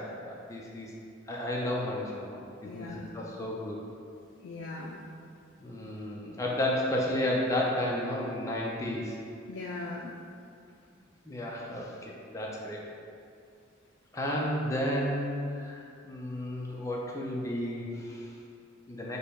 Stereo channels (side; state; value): both; normal; correlation 0.46